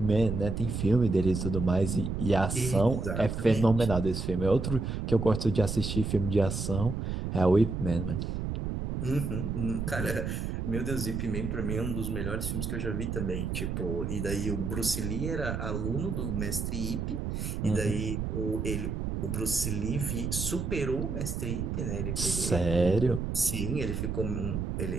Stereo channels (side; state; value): right; noise; rumble, 2 dB below the sound